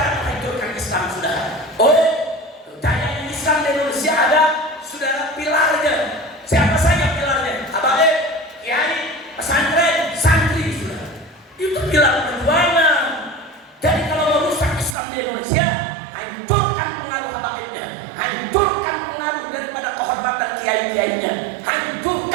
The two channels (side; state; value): left; drops out; at 15.0 s